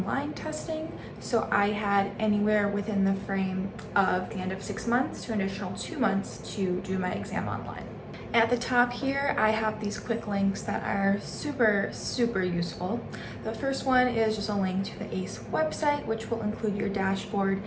testing, so I had anywhere within the frame of the end of 6 months to an additional 2 months to do my exam online. At the top here, I have these quick links that are super useful. The first one is just a link to the ACE website, which will include your dashboard.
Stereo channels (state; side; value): identical; both; correlation 1.00